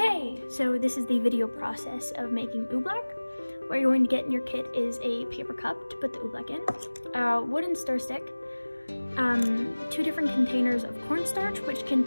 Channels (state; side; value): inverted; both; correlation -1.00